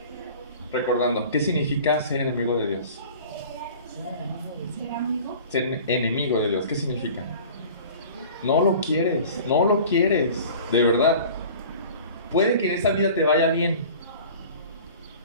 Recordando, ¿qué significa ser enemigo de Dios? Ser enemigo de Dios, ¿qué significa? No lo quieres, de verdad. puede que en esta vida te vaya bien,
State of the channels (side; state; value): both; inverted; correlation -0.43